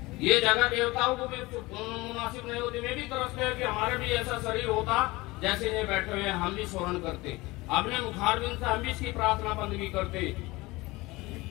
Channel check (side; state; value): right; quieter; 21.4 dB